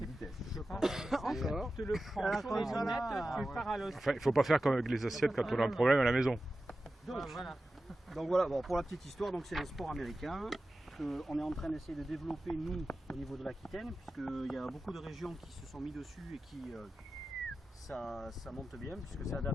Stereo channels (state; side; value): normal; both; correlation 0.93